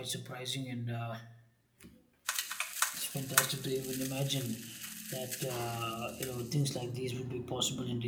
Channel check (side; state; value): both; identical; correlation 1.00